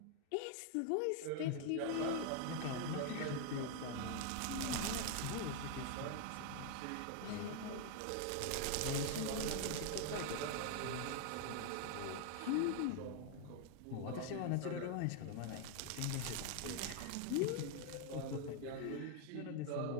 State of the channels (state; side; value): different; both; correlation 0.00